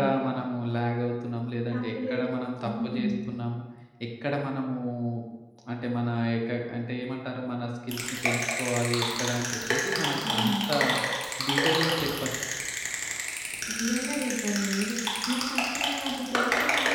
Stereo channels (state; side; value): identical; both; correlation 1.00